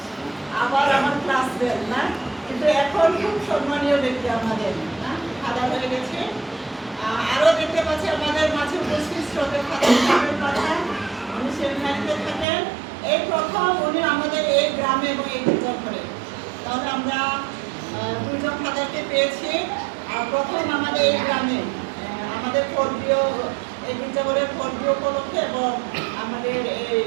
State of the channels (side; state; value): left; drops out; at 12.5 s